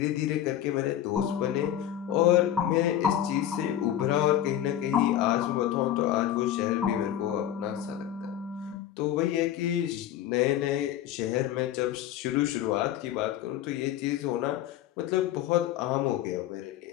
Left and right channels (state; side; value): quieter; right; 11.5 dB